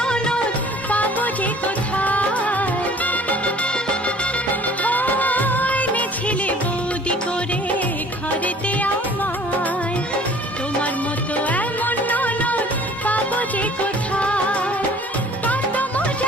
পাবো যে কোথায়। এনেছিলে বৌদি করে ঘরেতে আমার তোমার মতো এমন ননদ পাবো যে কোথায়। কত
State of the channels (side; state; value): both; normal; correlation 0.51